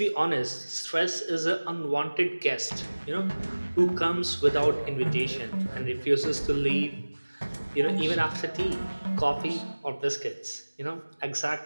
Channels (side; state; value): both; inverted; correlation -1.00